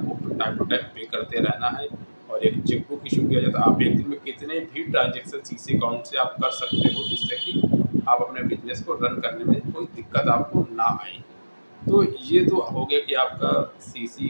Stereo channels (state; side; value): inverted; both; correlation -1.00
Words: टाइम टू टाइम पे करते रहना है, और एक चेकबुक इशू किया जाता है। आप एक दिन में कितने भी ट्रांजेक्शन सीसी अकाउंट से आप कर सकते हो, जिससे कि आप अपने बिजनेस को रन करने में कोई दिक्कत आपको ना आए। तो ये तो हो गया कि आपका सीसी